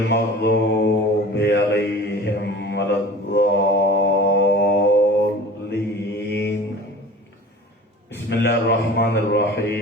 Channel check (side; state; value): both; normal; correlation 0.41